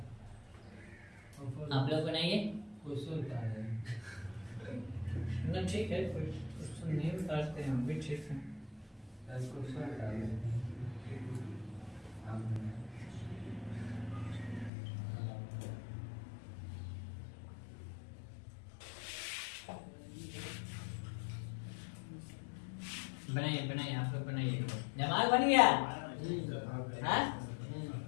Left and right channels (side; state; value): right; drops out; at 14.7 s